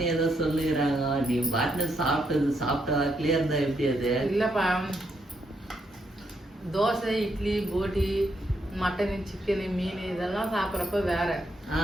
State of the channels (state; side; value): normal; both; correlation 0.78